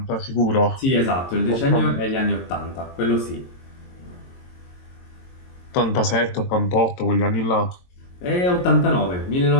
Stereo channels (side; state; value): right; late; 22 ms